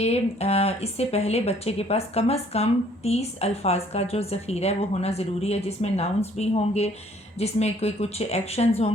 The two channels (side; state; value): both; normal; correlation 0.60